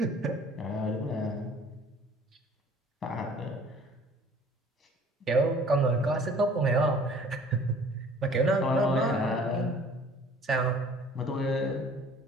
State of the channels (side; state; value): both; normal; correlation 0.52